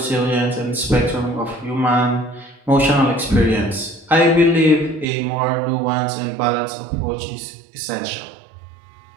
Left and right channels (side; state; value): left; drops out; at 5.1 s